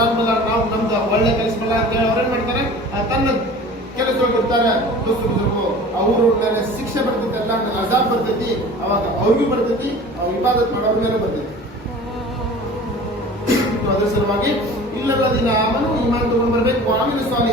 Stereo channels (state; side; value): normal; both; correlation 0.41